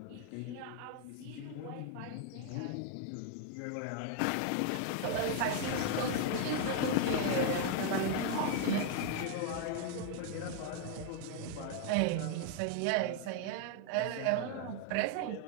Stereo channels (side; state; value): both; different; correlation 0.00